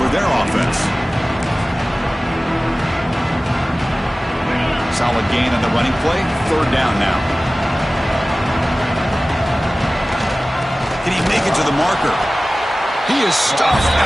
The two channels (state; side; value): normal; both; correlation 0.97